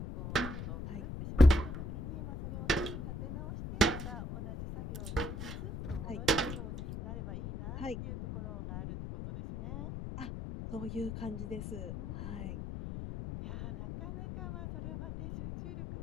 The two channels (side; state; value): left; noise; rumble, 7 dB below the sound